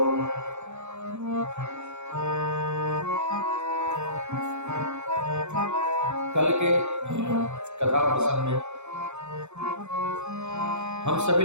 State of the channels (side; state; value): left; late; 0.82 ms